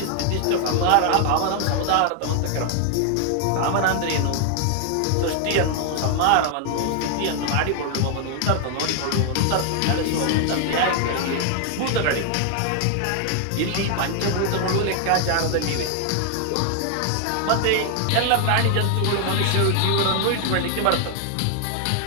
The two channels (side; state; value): both; different; correlation 0.00